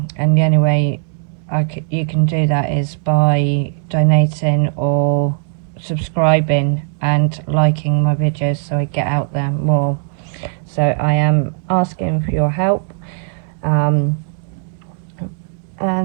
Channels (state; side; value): silent; left; digital silence